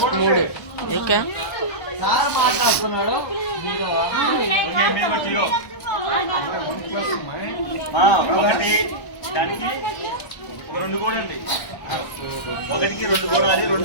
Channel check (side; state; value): right; late; 1.1 ms